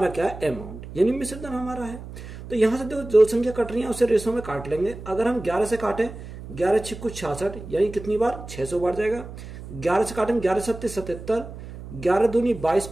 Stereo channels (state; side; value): noise; right; hum, 13 dB below the sound